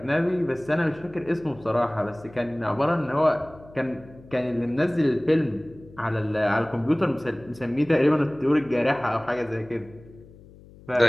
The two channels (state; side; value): noise; left; hum, 22 dB below the sound